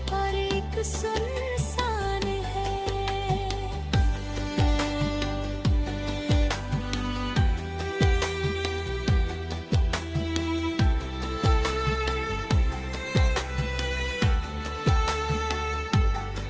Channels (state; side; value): identical; both; correlation 1.00